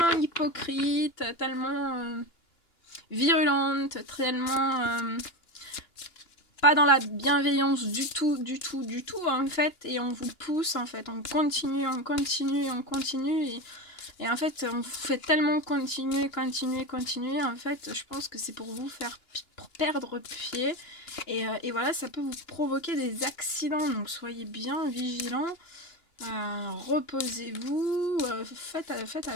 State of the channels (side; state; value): right; late; 2.9 ms